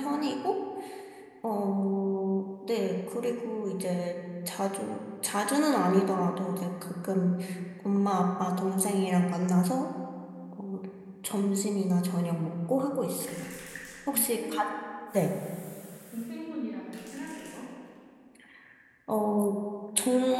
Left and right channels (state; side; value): identical; both; correlation 1.00